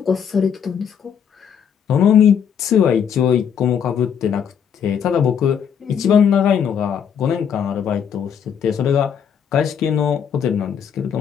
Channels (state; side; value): quieter; right; 7.8 dB